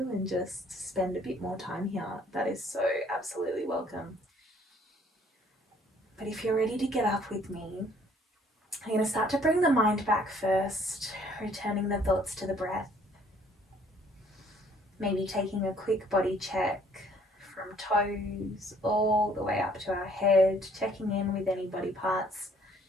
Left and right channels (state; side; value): normal; both; correlation 0.60